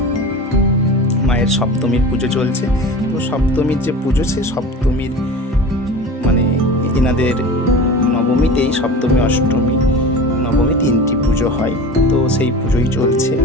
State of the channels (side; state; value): both; normal; correlation 0.33